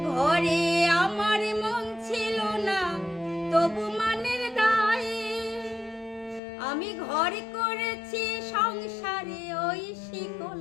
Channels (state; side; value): drops out; right; at 6.4 s